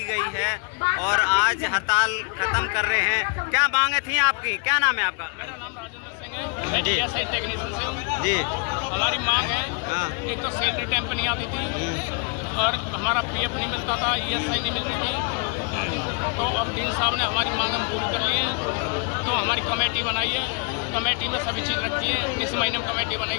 गई है और आज हड़ताल खत्म कर रहे हैं, क्या मांगे थी आपकी? क्या नाम है आपका? मेरा नाम राजेंद्र सिंह है, मैं ESI टेक्नीशियन से हूँ जी। हमारी मांग है, एक तो सैलरी टाइम पर नहीं आती थी और हमारा PF नहीं मिलता था, ESI नहीं मिलती थी। तो अब डीन साहब ने हमारी मांग हम पूरी कर ली है, तो हमारी कमेटी बनाई है, कमेटी में सभी चीज़ रखी है। इस महीने में कमेटी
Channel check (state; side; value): quieter; right; 35.5 dB